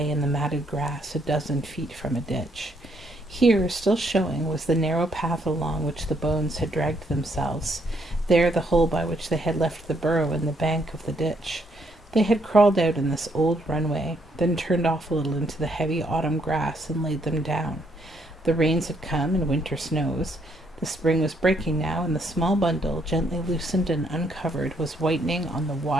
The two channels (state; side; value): normal; both; correlation 0.71